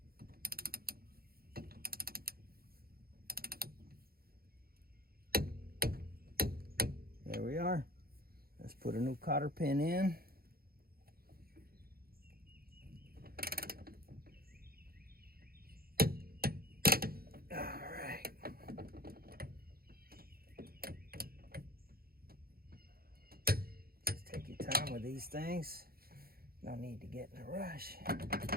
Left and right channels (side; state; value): left; late; 0.44 ms